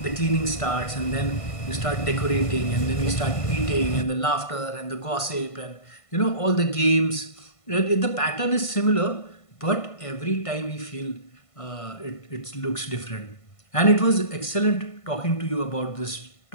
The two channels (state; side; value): late; right; 1.5 ms